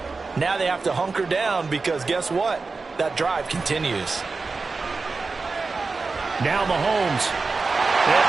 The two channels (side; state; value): left; quieter; 4.1 dB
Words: Now they have to hunker down because guess what? That drive continues. Now Mahomes. And